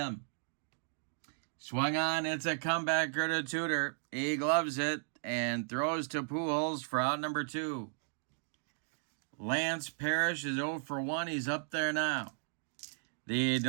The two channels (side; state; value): left; silent; digital silence